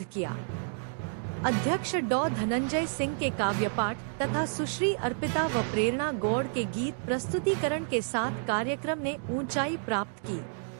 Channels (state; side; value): silent; left; digital silence